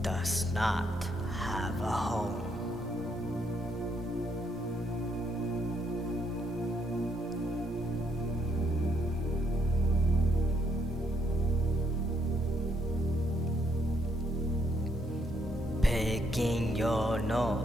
does not have a home. Picking your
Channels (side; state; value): both; normal; correlation 0.73